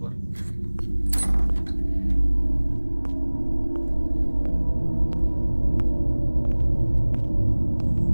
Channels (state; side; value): inverted; both; correlation -1.00